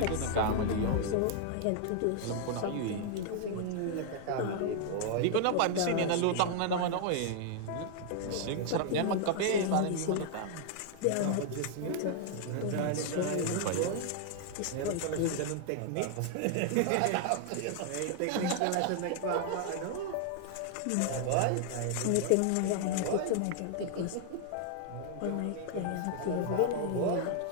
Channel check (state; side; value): different; both; correlation 0.00